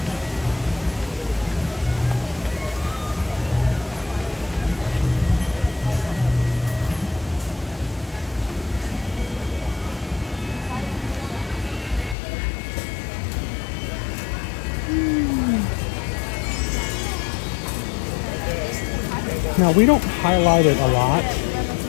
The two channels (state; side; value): drops out; right; at 12.2 s